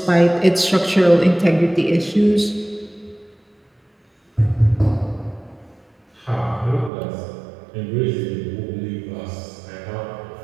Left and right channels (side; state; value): left; drops out; at 6.9 s